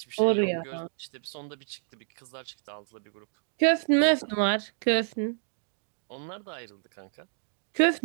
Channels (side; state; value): left; silent; digital silence